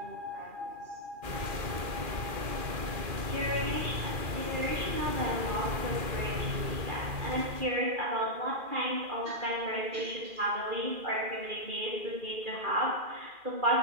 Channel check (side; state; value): left; late; 2.4 ms